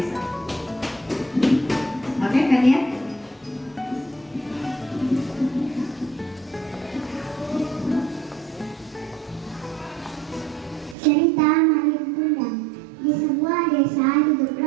bisa? Oke, kan ya? Cerita Malin Kundang. Di sebuah desa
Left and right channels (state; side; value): drops out; left; at 11.0 s